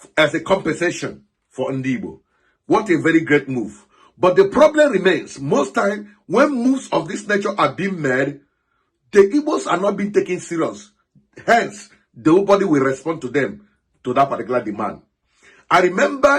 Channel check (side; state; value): both; identical; correlation 1.00